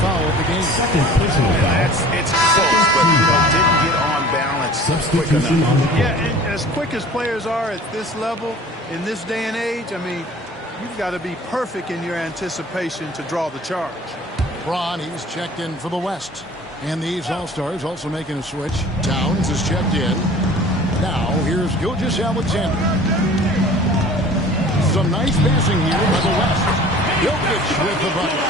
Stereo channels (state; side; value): normal; both; correlation 0.46